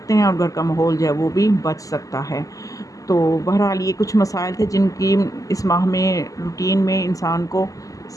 हैं और घर का माहौल जो है वो भी बच सकता है। तो बहरहाल ये कुछ मसाइल थे जिनकी इस माह में रूटीन में इंसान को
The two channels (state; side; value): late; right; 0.17 ms